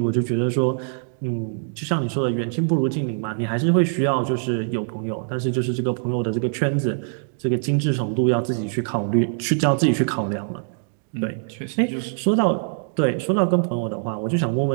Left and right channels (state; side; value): silent; left; digital silence